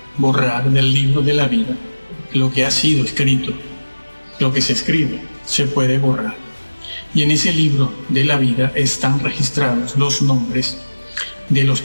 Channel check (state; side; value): inverted; both; correlation -1.00